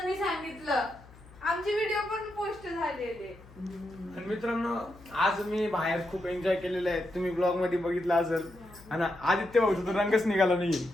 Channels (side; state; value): left; noise; hum, 22 dB below the sound